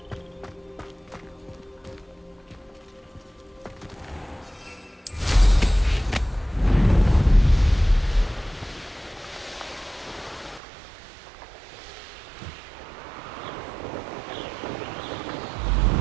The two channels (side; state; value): left; drops out; at 10.6 s